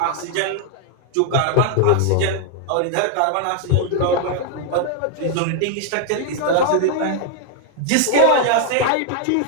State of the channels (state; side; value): different; both; correlation 0.00